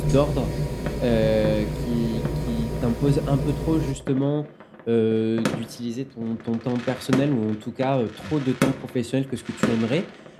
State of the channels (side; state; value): both; identical; correlation 1.00